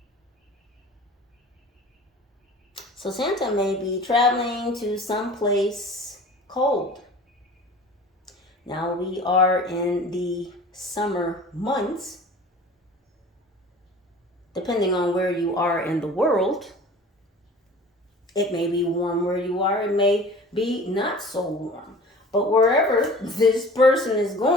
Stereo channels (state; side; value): normal; both; correlation 0.42